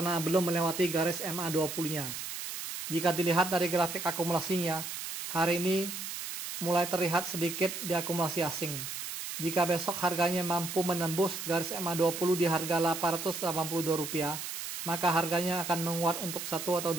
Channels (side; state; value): right; noise; hiss, 6 dB below the sound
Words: belum melewati garis MA20-nya. Jika dilihat dari grafik akumulasinya, hari ini mulai terlihat sedikit diakumulasi asing. Jika besok harganya mampu menembus garis MA20 di harga Rp882, maka harganya akan menguat untuk 1 atau